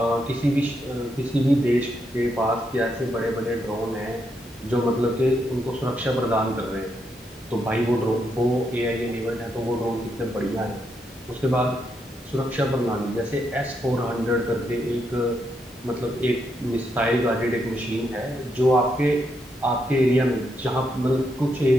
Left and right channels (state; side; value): normal; both; correlation 0.80